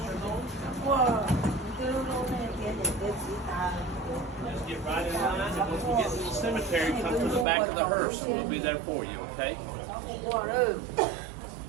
on. Just get right in line, and once we get to the cemetery, come to the back of the hearse, and we'll be there for you, okay? I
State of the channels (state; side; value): drops out; left; at 7.5 s